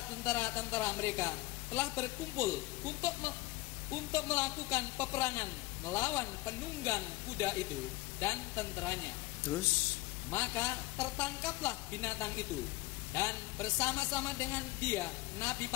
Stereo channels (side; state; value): right; quieter; 19.5 dB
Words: tentara-tentara mereka telah berkumpul untuk melakukan peperangan melawan penunggang kuda itu dan tenteranya. Terus, maka tertangkaplah binatang itu, dan bersama-sama dengan dia nabi